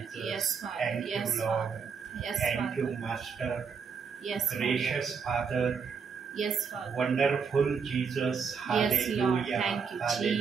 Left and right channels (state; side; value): quieter; left; 6.0 dB